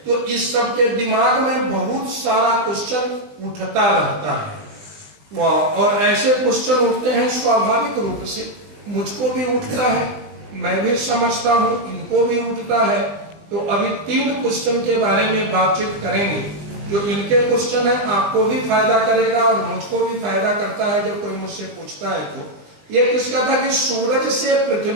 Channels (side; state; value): left; late; 20 ms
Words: तो इस सब के दिमाग में बहुत सारा क्वेश्चन उठता रहता है। और ऐसे क्वेश्चन उठते हैं स्वाभाविक रूप से, मुझको भी उठता है, मैं भी समझता हूँ, इनको भी उठता है। तो अभी 3 क्वेश्चन के बारे में बातचीत करेंगे। जो इनके क्वेश्चन है आपको भी फायदा करेगा और मुझको भी फायदा करता है जब कोई मुझसे पूछता है। तो ये किसका था कि सूरज से